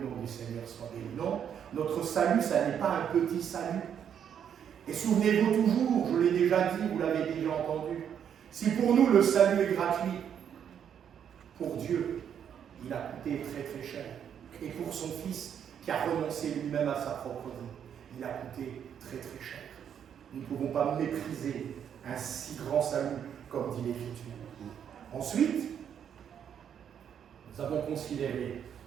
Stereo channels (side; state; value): left; quieter; 8.6 dB